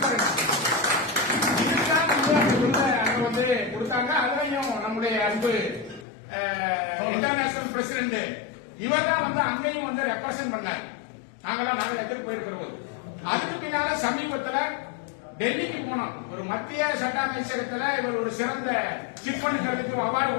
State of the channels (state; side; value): drops out; right; at 6.1 s